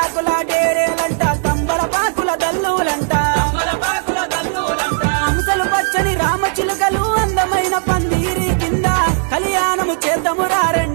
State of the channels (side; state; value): left; silent; 61 dB below the other